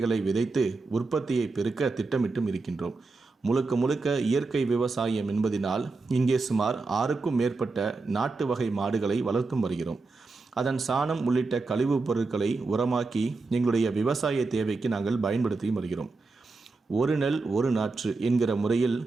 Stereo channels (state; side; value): quieter; left; 3.8 dB